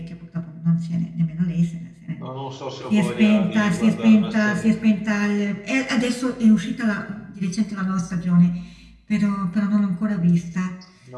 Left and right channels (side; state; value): both; identical; correlation 1.00